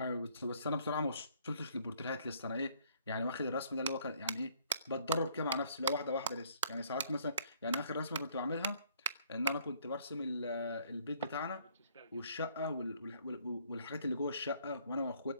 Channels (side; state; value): both; inverted; correlation -0.63